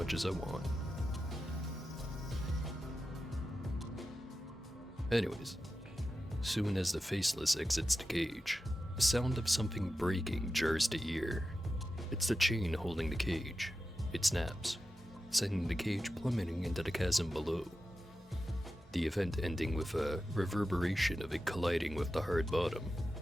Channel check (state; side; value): normal; both; correlation 0.92